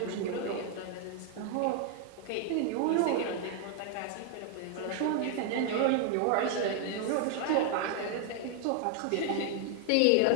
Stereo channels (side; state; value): both; different; correlation 0.00